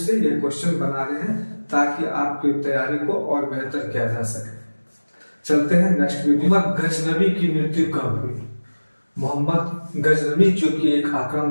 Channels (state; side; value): inverted; both; correlation -1.00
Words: ये क्वेश्चन बना रहे हैं ताकि आपकी तैयारी को और बेहतर किया जा सके। चलते हैं नेक्स्ट वीडियो। मोहम्मद गजनवी की मृत्यु कब हुई? मोहम्मद गजनवी जो कि एक